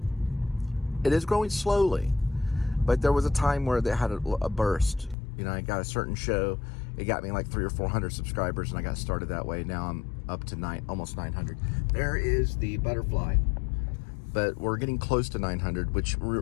It is growing slowly, but there was a time where they had a burst. You know, I got a certain show. It got me like 300 or 400 subscribers, and I got started that way. Now I'm up to almost 900. There is the butterfly. But we're getting close to 900, which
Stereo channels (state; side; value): drops out; right; at 5.2 s